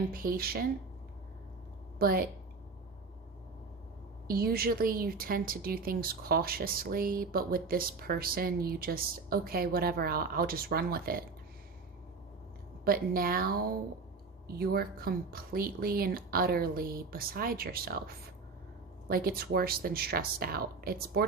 but usually you tend to do things cautiously. But with this person, you just, okay, whatever, I'll just run with it. But now you're completely and utterly beside yourself. Like, it's worse than stressed out. It's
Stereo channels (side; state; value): left; quieter; 4.3 dB